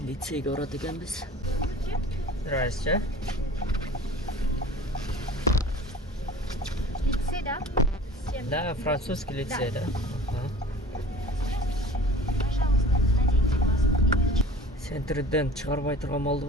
лицейге барат экенбиз. Здрасте. Лицей, да? Да, французский лицей, да. Пожалуйста, наденьте маску и перчатки. Центрден чыгарбай турган болду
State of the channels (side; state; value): both; normal; correlation 0.43